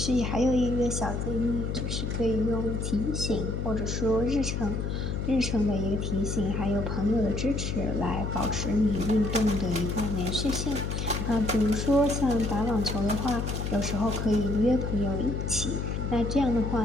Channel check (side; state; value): left; noise; hum, 2 dB below the sound